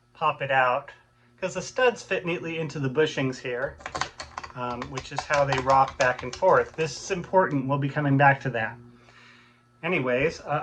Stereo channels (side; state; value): both; identical; correlation 1.00